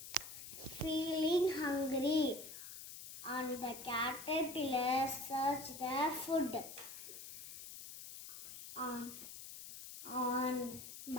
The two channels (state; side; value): noise; left; hiss, 11 dB below the sound